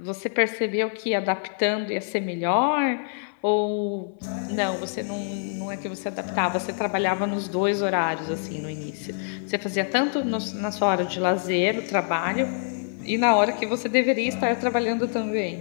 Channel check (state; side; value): silent; right; 61 dB below the other